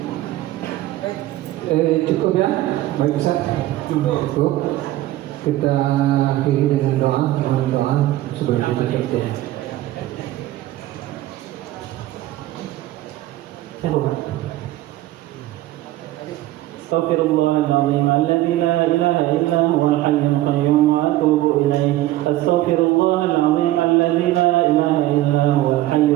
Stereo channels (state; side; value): quieter; left; 15.7 dB